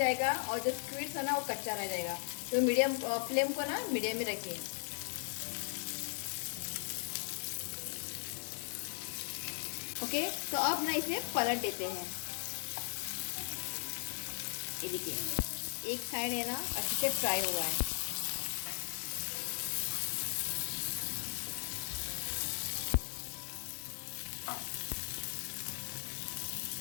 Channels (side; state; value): right; silent; 53 dB below the other